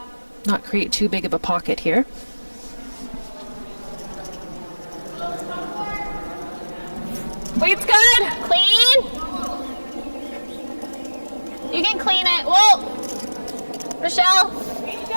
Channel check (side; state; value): both; inverted; correlation -1.00